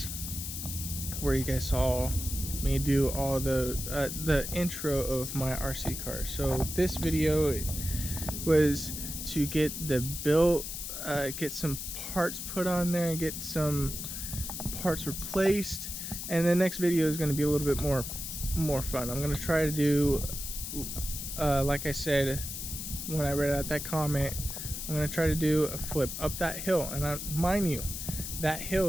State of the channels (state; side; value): noise; left; hiss, 6 dB below the sound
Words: where you guys saw me do all the intro of my RC car. So this video was to get the build, get some parts put on there and get some parts replaced, and the next video is going to be a little bit more fun. I'm going to try to do, like I said when I read out that comment, I'm going to try to do a flip up that hill, and mind you, that hill